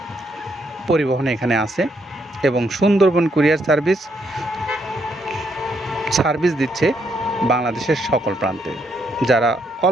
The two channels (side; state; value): both; normal; correlation 0.75